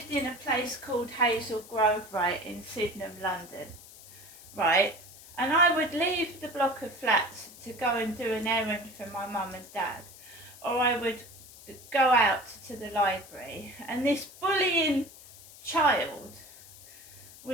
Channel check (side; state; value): left; noise; hiss, 19 dB below the sound